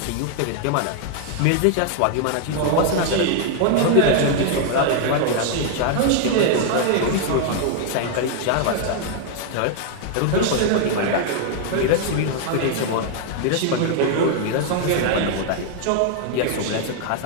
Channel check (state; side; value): different; both; correlation 0.00